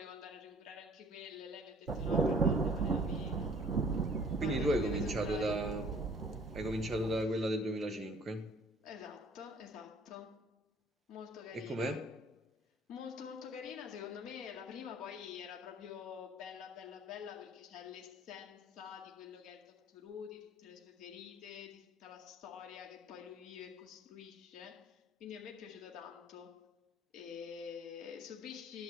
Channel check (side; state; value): both; normal; correlation 0.54